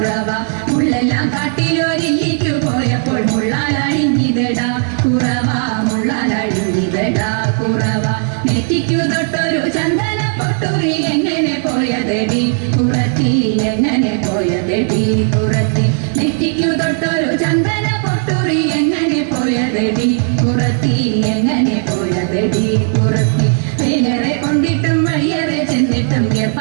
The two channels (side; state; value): left; silent; 59 dB below the other